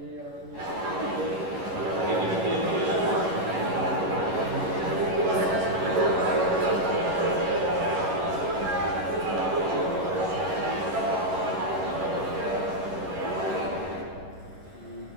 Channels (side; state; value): left; late; 11 ms